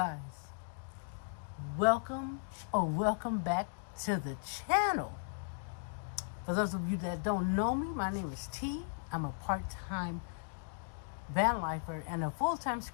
welcome back to the channel. For those of you that don't know me, my name is T. I'm a part-time van lifer and a full-time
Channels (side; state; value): right; silent; digital silence